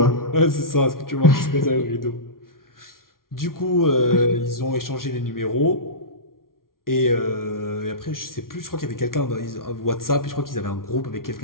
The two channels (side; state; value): right; late; 0.92 ms